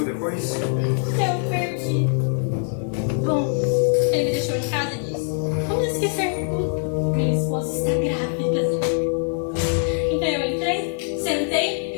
depois? Eu perdi. Bom, ele me deixou em casa e disse, vamos esquecer tudo. Minha esposa está grávida. Então eu entrei, sentei e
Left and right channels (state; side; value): silent; right; 58 dB below the other